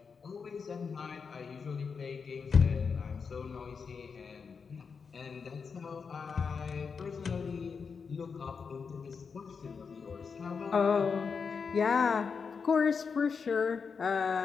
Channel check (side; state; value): right; quieter; 5.6 dB